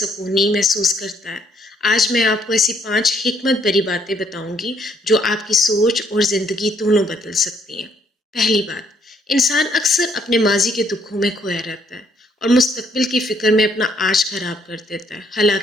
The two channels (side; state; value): both; normal; correlation 0.68